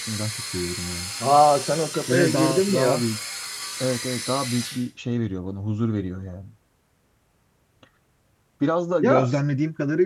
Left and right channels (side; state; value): both; identical; correlation 1.00